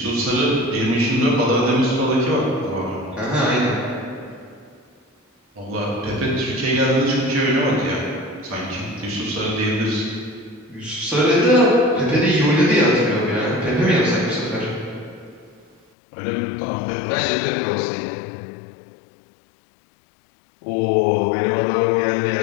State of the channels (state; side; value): drops out; right; at 15.8 s